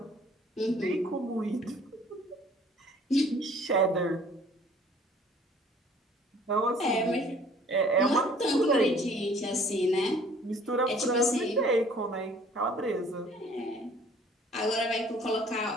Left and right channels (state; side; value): normal; both; correlation 0.54